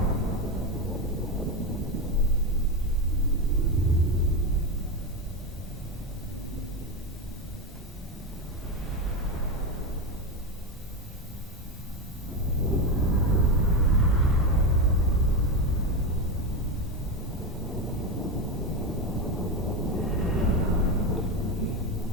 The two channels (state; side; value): normal; both; correlation 0.14